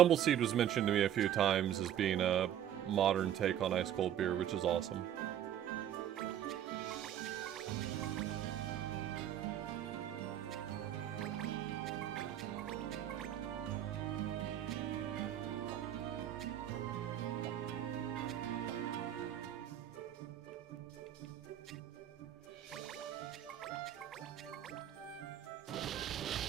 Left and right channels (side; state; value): left; quieter; 10.8 dB